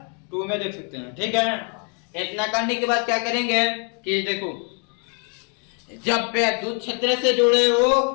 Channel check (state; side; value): quieter; right; 38.2 dB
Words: 2 में देख सकते हैं, ठीक है। इतना करने के बाद क्या करेंगे कि देखो, जब वैद्युत क्षेत्र से जुड़े हो